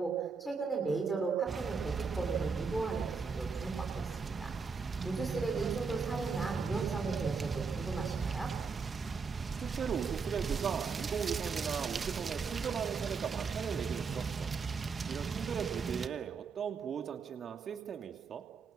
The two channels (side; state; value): left; quieter; 5.2 dB